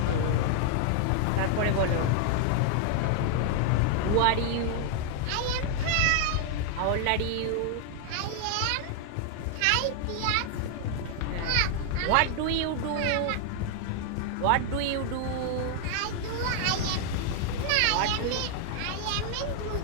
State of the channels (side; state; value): both; different; correlation 0.00